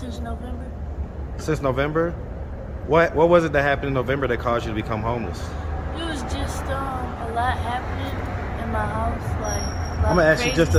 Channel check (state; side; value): identical; both; correlation 1.00